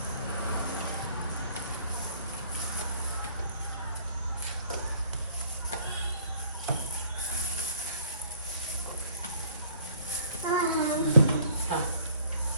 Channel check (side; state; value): both; inverted; correlation -0.59